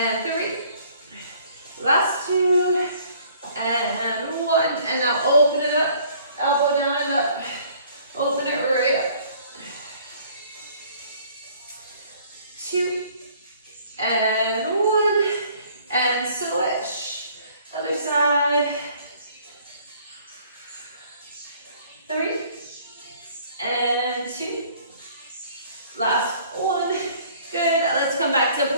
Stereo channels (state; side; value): inverted; both; correlation -0.57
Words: 3. Last 2. And 1. And now open it up. Elbow down and up. Open it right up. 2. And 1. And switch. Other side. 3. And 2. Last 1. Good. Let's come back to